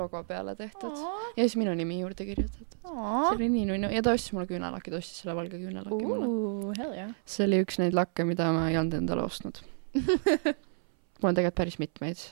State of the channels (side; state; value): left; silent; 58 dB below the other